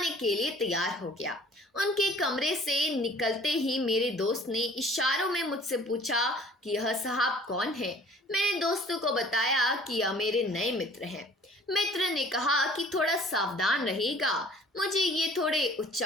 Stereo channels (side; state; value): both; normal; correlation 0.52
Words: के लिए तैयार हो गया। उनके कमरे से निकलते ही मेरे दोस्त ने इशारों में मुझसे पूछा कि यह साहब कौन है। मैंने दोस्तों को बताया कि यह मेरे नए मित्र हैं। मित्र ने कहा कि थोड़ा सावधान रहिएगा, मुझे ये थोड़े